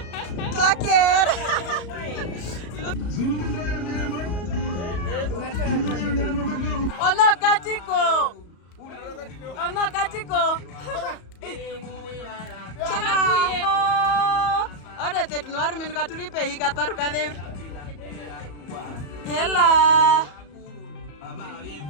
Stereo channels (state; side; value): late; right; 34 ms